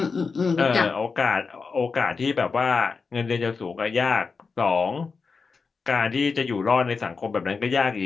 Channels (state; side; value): quieter; right; 4.9 dB